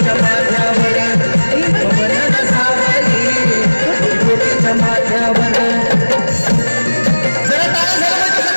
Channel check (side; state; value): both; inverted; correlation -1.00